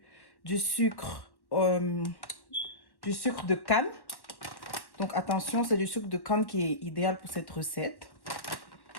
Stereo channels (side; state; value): right; late; 1.1 ms